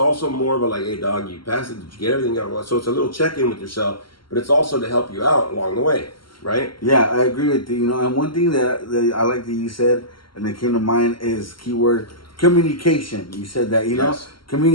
more of a like, hey dog, you passed it, did you get everything out? So it's a little check-in with yourself, but it's also to help you out along the way, right? Yeah, I agree with you. You know, and one thing that I like that you said, and that came to mind, is keyword communication. You said that, you know, Yes.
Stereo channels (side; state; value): right; late; 0.73 ms